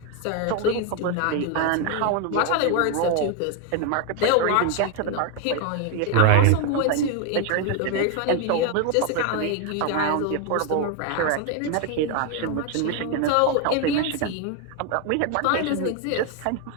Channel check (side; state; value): both; different; correlation 0.01